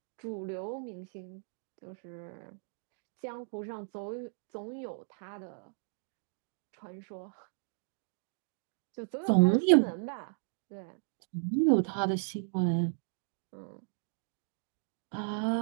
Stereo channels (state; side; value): silent; left; digital silence